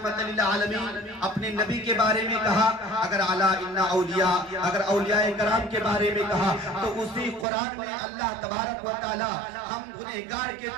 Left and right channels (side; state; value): left; drops out; at 7.5 s